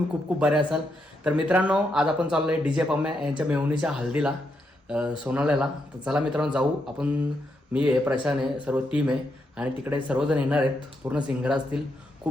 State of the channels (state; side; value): normal; both; correlation 0.81